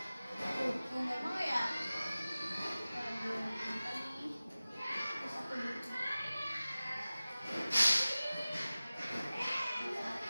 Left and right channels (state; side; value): inverted; both; correlation -0.97